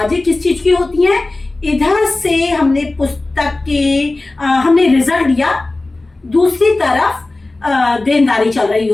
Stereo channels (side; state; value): right; quieter; 3.1 dB